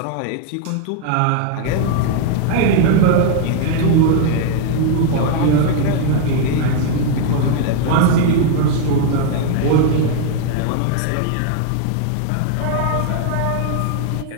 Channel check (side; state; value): both; different; correlation 0.00